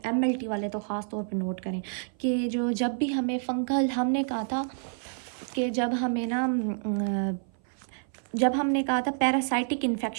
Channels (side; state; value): left; silent; 56 dB below the other